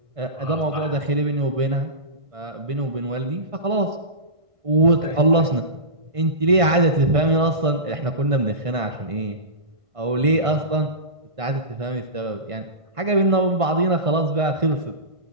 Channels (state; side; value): late; left; 1.5 ms